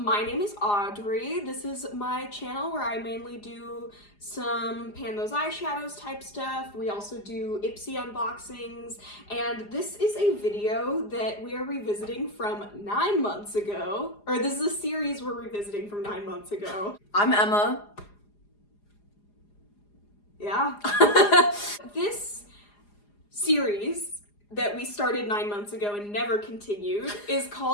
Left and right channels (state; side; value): late; right; 4.9 ms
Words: name is Audrey. This is my channel where I mainly do some pan those eyeshadows type stuff. We also do Ipsy unboxings, and this is a video that we are revisiting from 9 months ago, or this is a series we're revisiting from 9 months ago. I'm Emma. Yeah. This series that we started 9 months ago and never continued is